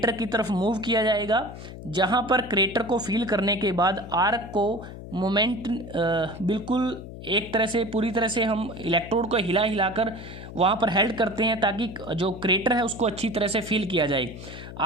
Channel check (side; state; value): left; noise; hum, 12 dB below the sound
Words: की तरफ मूव किया जाएगा, जहाँ पर क्रेटर को फील करने के बाद आर्क को मोमेंट बिल्कुल एक तरह से पूरी तरह से हम इलेक्ट्रोड को हिला हिलाकर वहाँ पर हेल्ड करते हैं ताकि जो क्रेटर है उसको अच्छी तरह से फील किया जाए।